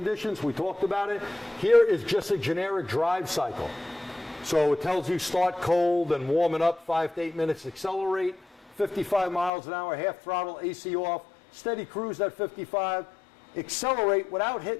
We talked about it. Here is just a generic drive cycle. So it tells you start cold and warm it up 5 to 8 minutes, accelerate 55 miles an hour, half throttle, AC off, steady cruise at 55, accelerate without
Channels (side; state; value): right; drops out; at 9.5 s